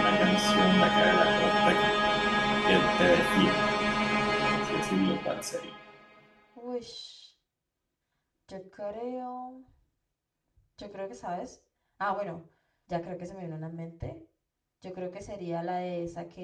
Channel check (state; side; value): identical; both; correlation 1.00